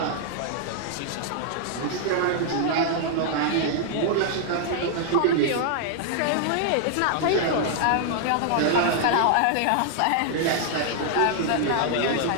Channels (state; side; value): different; both; correlation -0.01